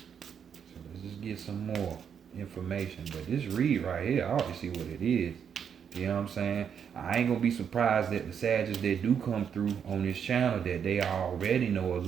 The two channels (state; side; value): quieter; left; 7.7 dB